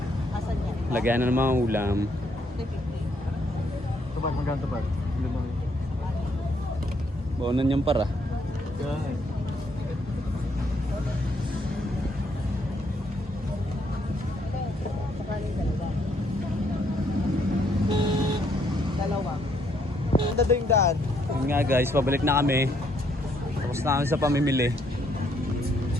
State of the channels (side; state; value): both; normal; correlation 0.71